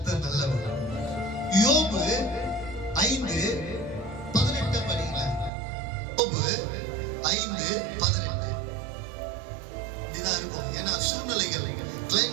நல்லவர். யோபு 5:18 படிங்க. யோபு 5:18. இதுதான் இருக்கும். ஏன்னா சூழ்நிலைகள்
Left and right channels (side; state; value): left; drops out; at 5.5 s